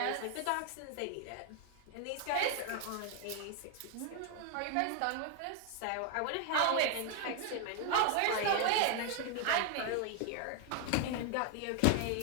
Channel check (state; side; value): different; both; correlation 0.00